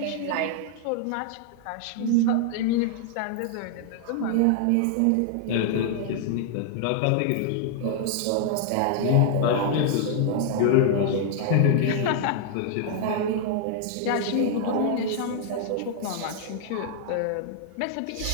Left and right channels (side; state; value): both; different; correlation 0.00